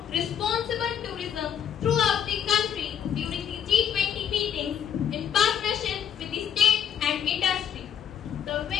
responsible tourism throughout the country during the G20 meetings in partnership with the state and industry. The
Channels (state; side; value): quieter; right; 8.8 dB